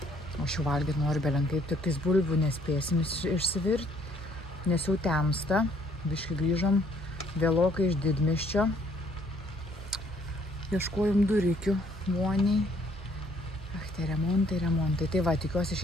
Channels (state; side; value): normal; both; correlation 0.64